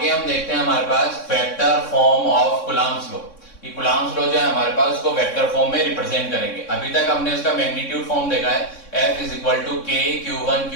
हम देखते हैं हमारे पास vector form of Coulomb's law. ये कूलम्ब्स लॉ जो है हमारे पास उसको वेक्टर फॉर्म में रिप्रेजेंट करेंगे। अभी तक हमने उसका मैग्नीट्यूड फॉर्म देखा है, F = K Q1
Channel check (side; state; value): right; late; 3.6 ms